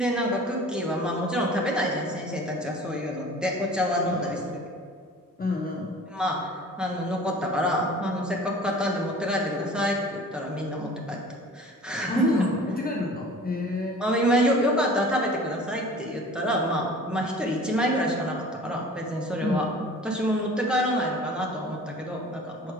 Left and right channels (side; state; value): both; normal; correlation 0.44